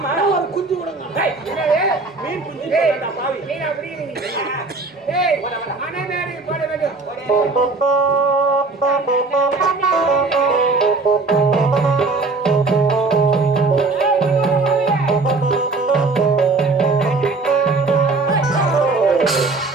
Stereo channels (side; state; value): left; quieter; 3.7 dB